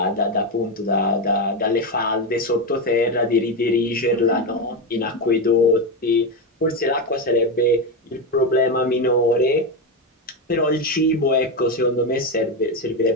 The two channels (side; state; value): both; normal; correlation 0.11